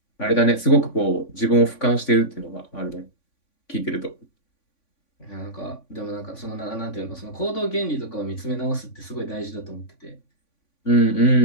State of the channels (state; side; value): late; right; 3.5 ms